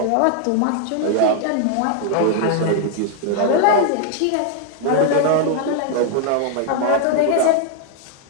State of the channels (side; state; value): both; different; correlation 0.00